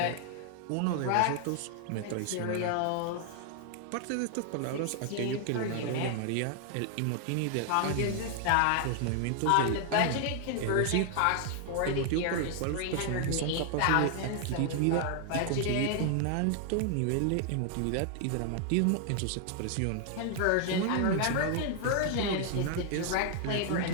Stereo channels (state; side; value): different; both; correlation 0.00